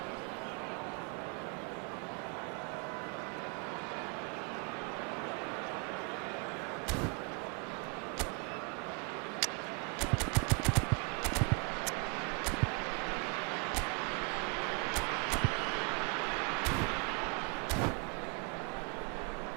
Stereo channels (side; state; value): left; quieter; 33.6 dB